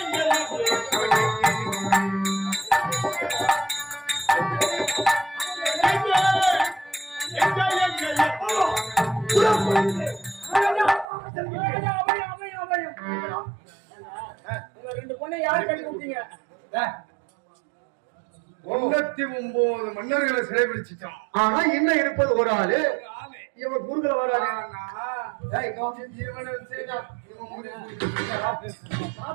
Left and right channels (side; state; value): left; drops out; at 11.1 s